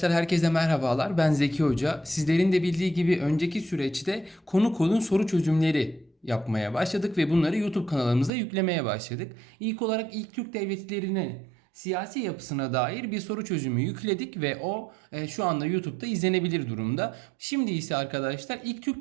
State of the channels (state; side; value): drops out; left; at 8.3 s